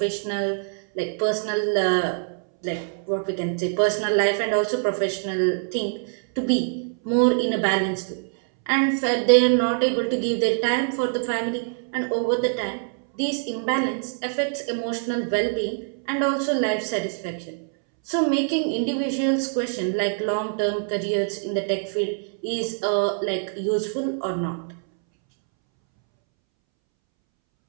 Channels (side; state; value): left; silent; 62 dB below the other